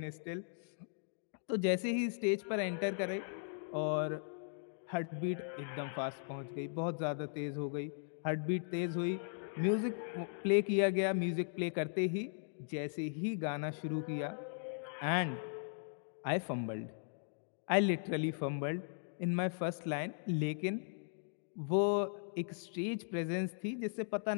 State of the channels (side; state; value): right; silent; digital silence